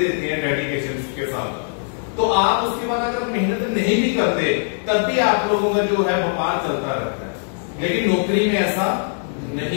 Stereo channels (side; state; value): right; silent; digital silence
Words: हैं डेडिकेशन के साथ, तो आप उसके बाद अगर मेहनत नहीं भी करते तब भी आप लोगों का जो है व्यापार चलता रहता है। लेकिन नौकरी में ऐसा